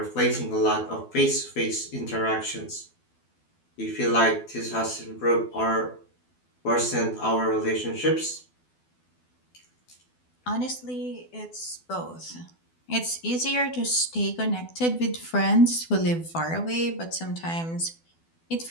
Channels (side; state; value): right; late; 12 ms